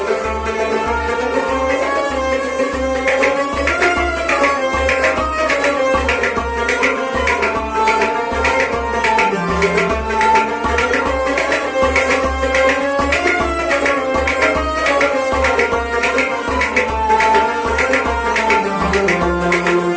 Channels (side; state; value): both; identical; correlation 1.00